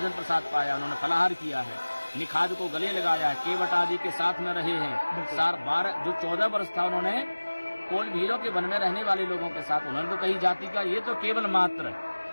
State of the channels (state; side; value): inverted; both; correlation -1.00